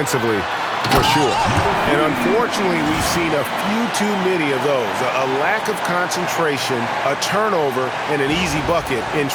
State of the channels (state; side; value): identical; both; correlation 1.00